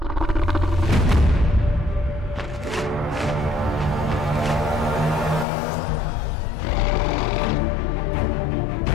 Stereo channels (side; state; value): right; drops out; at 5.5 s